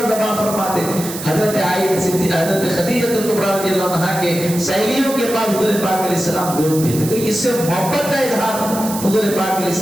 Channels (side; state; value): right; noise; hiss, 9 dB below the sound